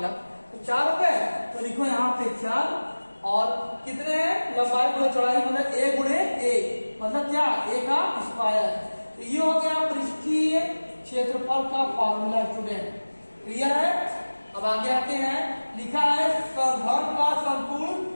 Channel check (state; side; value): inverted; both; correlation -1.00